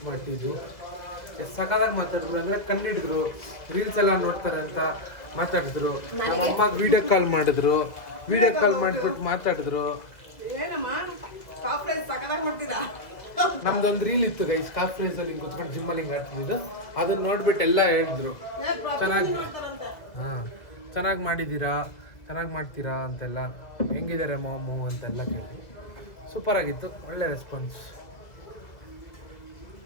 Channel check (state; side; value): late; right; 2.0 ms